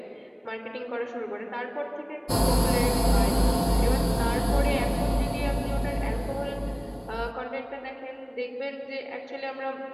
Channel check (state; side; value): identical; both; correlation 1.00